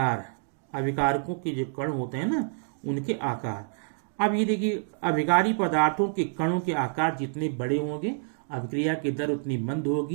अभिकारकों के जो कण होते हैं ना उनके आकार। अब ये देखिए अभिकारी पदार्थों के कणों के आकार जितने बड़े होंगे अभिक्रिया की दर उतनी मंद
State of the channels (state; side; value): silent; left; digital silence